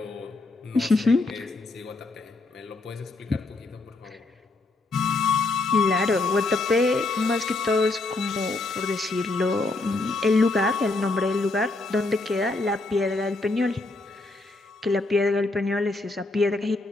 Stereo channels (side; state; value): right; quieter; 3.2 dB